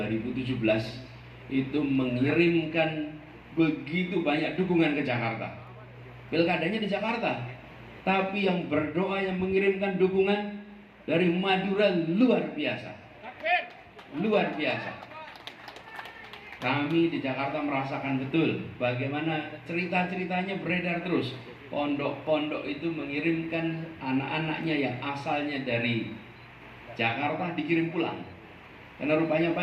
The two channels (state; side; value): identical; both; correlation 1.00